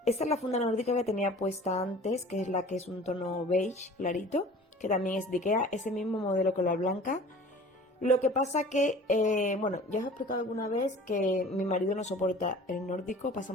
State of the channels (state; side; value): normal; both; correlation 0.44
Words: Esta es la funda nórdica que tenía puesta antes, que es la que es un tono beige clarito, que también es de Ikea, ese mismo modelo que la blanca. Lo que pasa que, bueno, ya os he explicado alguna vez que mi marido no soporta el nórdico, pasa